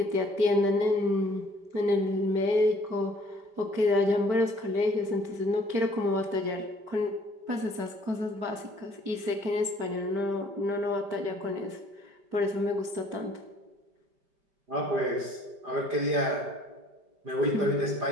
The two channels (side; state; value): left; late; 5.1 ms